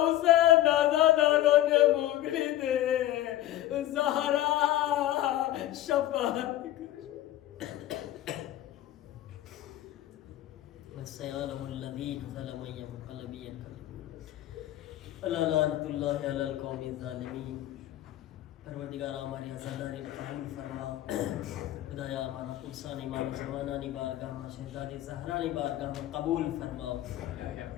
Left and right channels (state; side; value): quieter; right; 13.8 dB